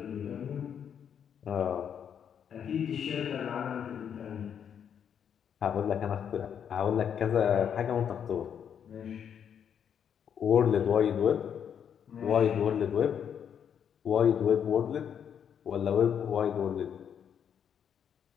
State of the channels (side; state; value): right; quieter; 8.3 dB